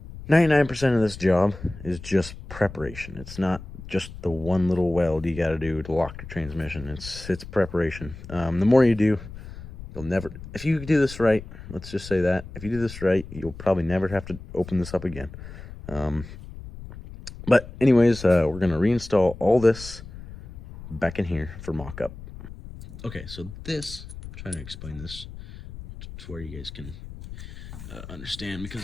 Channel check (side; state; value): left; noise; rumble, 14 dB below the sound